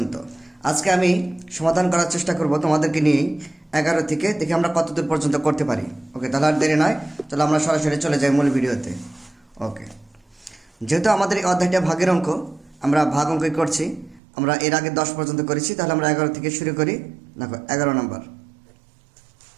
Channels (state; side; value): drops out; left; at 14.2 s